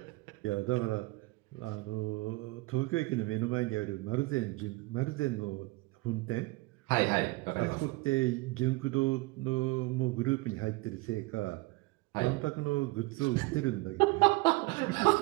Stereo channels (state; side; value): quieter; left; 23.0 dB